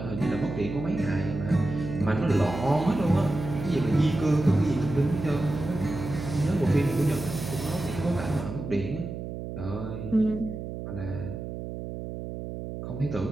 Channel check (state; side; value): noise; right; hum, 7 dB below the sound